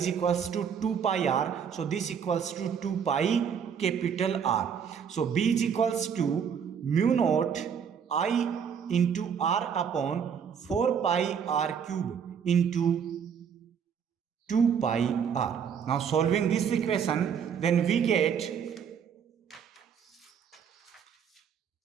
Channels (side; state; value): left; quieter; 7.3 dB